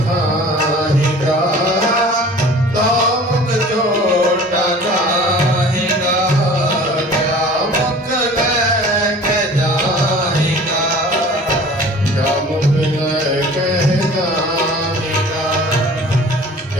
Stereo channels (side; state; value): both; normal; correlation 0.44